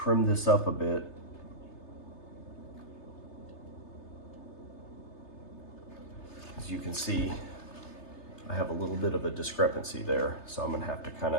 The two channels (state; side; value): late; right; 3.3 ms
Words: this up a bit. As you can see, I have a little bit of a discrepancy there. So I'm gonna have to kind